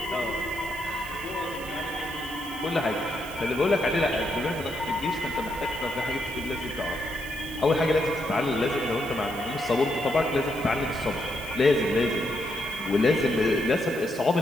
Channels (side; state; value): right; noise; hiss, 17 dB below the sound